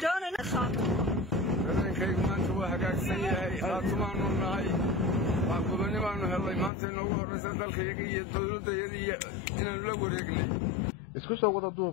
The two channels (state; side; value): drops out; right; at 6.7 s